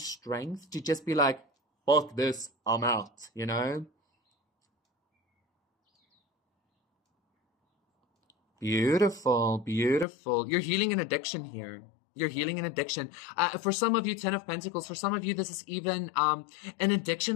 to just be like, fuck this, I'm out, you know? Beautiful, beautiful. You're healing an addiction here. You're healing an addiction. For some of you, Ten of Pentacles, for some of you, this is even an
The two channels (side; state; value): right; drops out; at 10.1 s